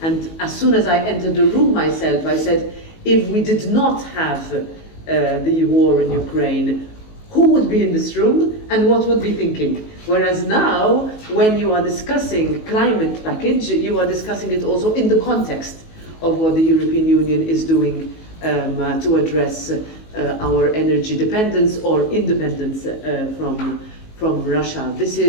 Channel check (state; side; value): late; right; 19 ms